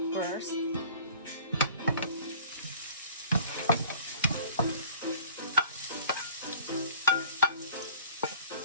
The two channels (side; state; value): both; inverted; correlation -0.49